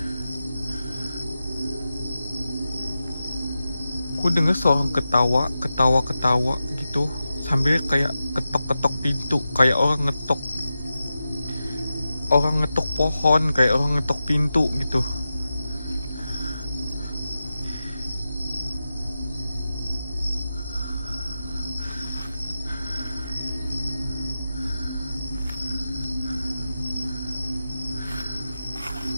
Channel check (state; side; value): inverted; both; correlation -0.92